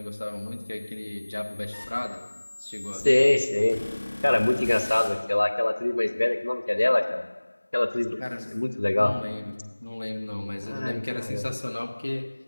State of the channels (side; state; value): both; inverted; correlation -1.00